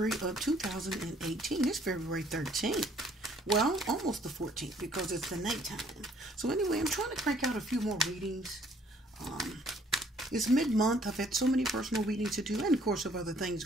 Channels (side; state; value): both; normal; correlation 0.61